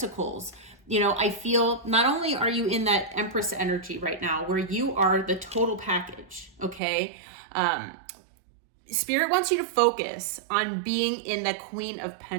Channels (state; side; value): drops out; left; at 6.8 s